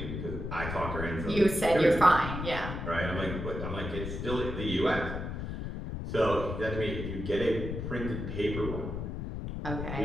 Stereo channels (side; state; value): left; noise; rumble, 5 dB below the sound